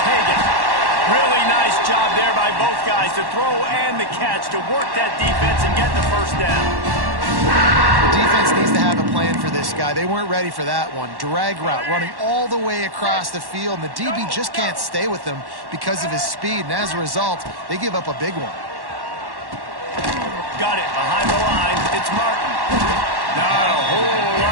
Hagan. Really nice job there by both guys to throw and the catch to work that defense and get the first down. The defense needs to have a plan for this guy. They weren't ready for that one. Drag route, running all the way across the field, and the DB just can't stay with him because of his speed, and as a result, they give up a big one. Got it behind the line. It's Martin. Not a whole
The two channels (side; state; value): left; late; 1.1 ms